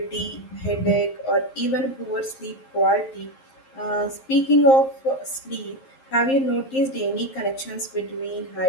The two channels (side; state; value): right; late; 11 ms